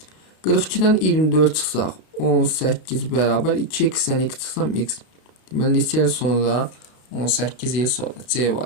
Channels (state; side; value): late; right; 32 ms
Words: 42-dən 24 çıxsaq 18 bərabər 2x-dən x çıxsam x. Deməli neçə il sonra? 18 il sonra. C